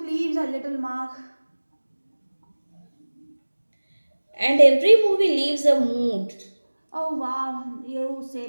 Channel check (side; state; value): both; inverted; correlation -1.00